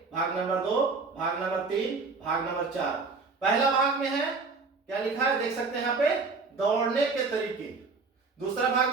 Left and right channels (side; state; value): left; quieter; 4.3 dB